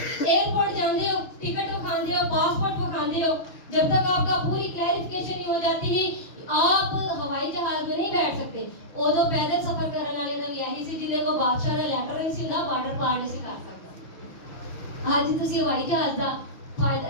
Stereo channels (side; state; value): right; late; 5.8 ms